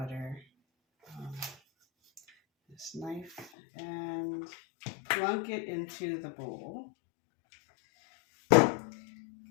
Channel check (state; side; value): drops out; right; at 3.5 s